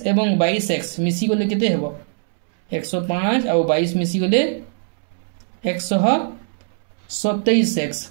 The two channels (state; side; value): silent; left; 65 dB below the other